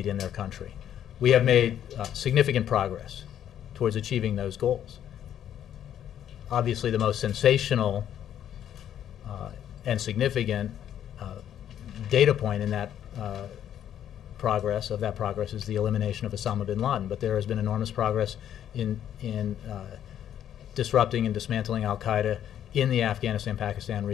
in their country. We have made significant progress towards achieving those goals. Obviously, the most sensational and significant data point in that progress is the elimination of Osama bin Laden. But there has been enormous progress in disrupting and dismantling al-Qaeda in the Afghanistan-Pakistan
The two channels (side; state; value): right; quieter; 10.3 dB